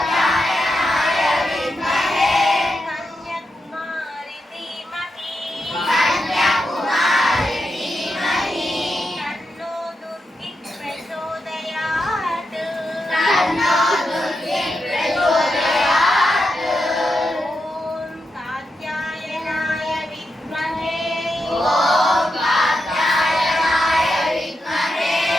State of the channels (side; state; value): both; normal; correlation 0.86